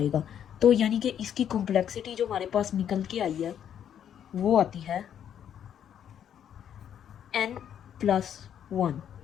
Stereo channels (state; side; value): quieter; right; 9.4 dB